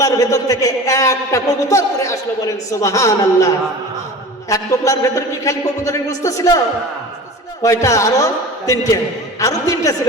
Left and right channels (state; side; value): normal; both; correlation 0.37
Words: ভেতর থেকে একটা কবুতর করে আসলো, বলেন সুবহানাল্লাহ। এক টোপলার ভেতর কি খালি কবুতরের গোশত ছিল? কয়টা? আরো 3টে। আরো 3টে ছিল,